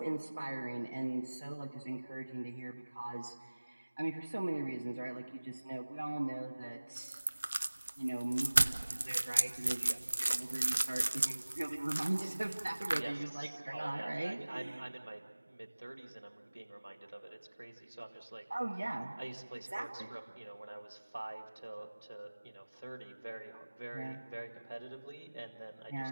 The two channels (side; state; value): both; inverted; correlation -1.00